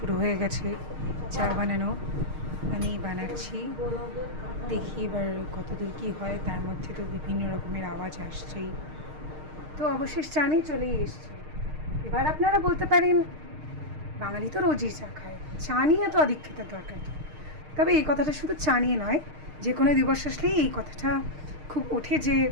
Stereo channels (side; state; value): left; late; 6.5 ms